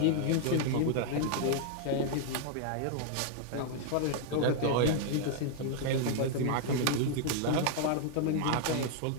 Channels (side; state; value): both; different; correlation 0.00